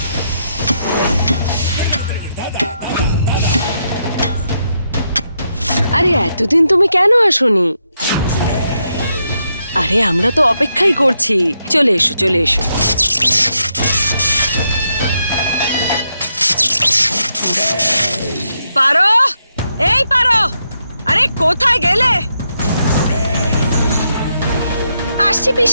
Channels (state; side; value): inverted; both; correlation -0.81